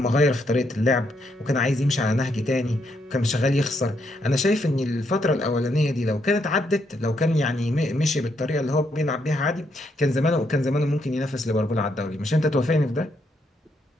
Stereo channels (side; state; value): both; normal; correlation 0.76